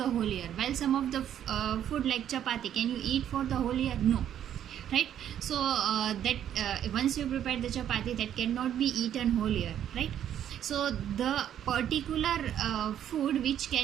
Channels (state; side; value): quieter; left; 10.3 dB